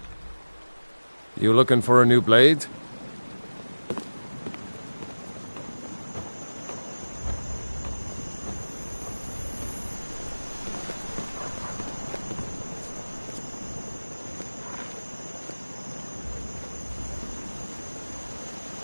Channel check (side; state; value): both; inverted; correlation -1.00